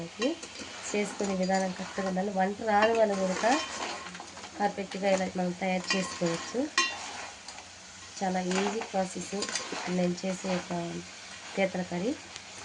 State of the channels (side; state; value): both; identical; correlation 1.00